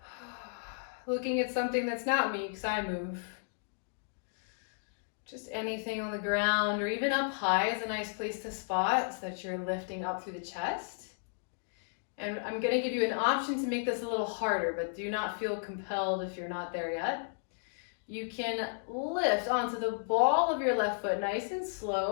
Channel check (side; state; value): right; silent; digital silence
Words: Looking at something that's not me, because I move. Just anything on the ground or even up high is a nice place to spot so that you're lifting up through the chest. And I'm going to give you an option to make this a little harder, but do not feel compelled if you're not there yet. You can lift onto the ball of your left foot nice and